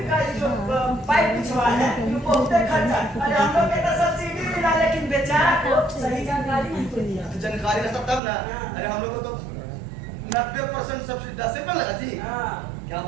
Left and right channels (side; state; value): left; drops out; at 8.2 s